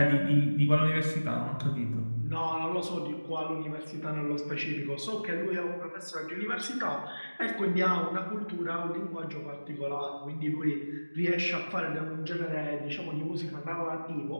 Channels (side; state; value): both; inverted; correlation -1.00